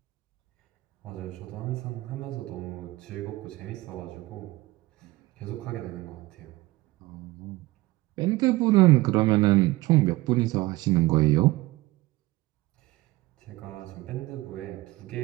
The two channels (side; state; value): left; quieter; 19.6 dB